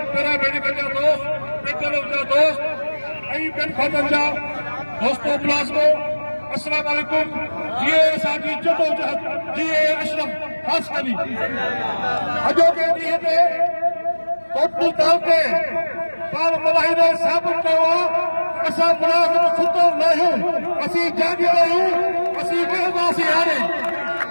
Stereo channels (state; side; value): inverted; both; correlation -1.00